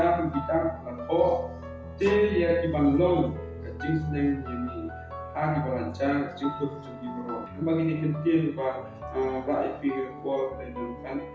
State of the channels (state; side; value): identical; both; correlation 1.00